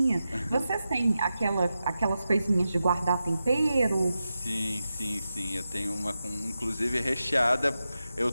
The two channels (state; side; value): inverted; both; correlation -0.91